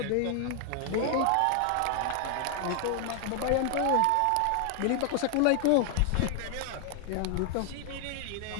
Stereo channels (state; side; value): different; both; correlation 0.00